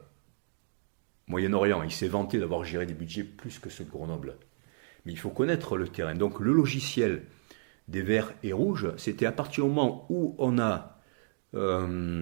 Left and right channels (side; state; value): left; silent; digital silence